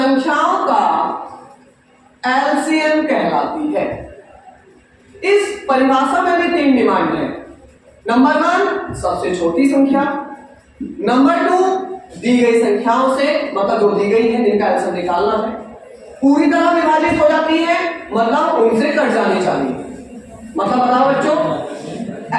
का एलसीएम कहलाती है। इस परिभाषा में भी 3 डिमांड है। नंबर 1 सबसे छोटी संख्या, नंबर 2 दी गई संख्याओं से, मतलब जो दी गई है जिनका एलसीएम निकालना है, पूरी तरह विभाजित हो जाती है, मतलब उनसे कट जानी चाहिए। मतलब बताओ बच्चों,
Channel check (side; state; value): both; identical; correlation 1.00